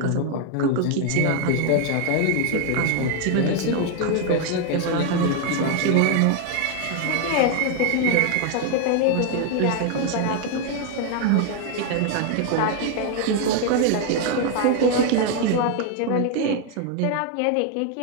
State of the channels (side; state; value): both; different; correlation 0.01